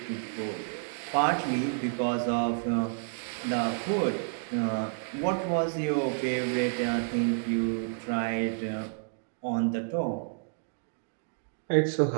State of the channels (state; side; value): silent; left; digital silence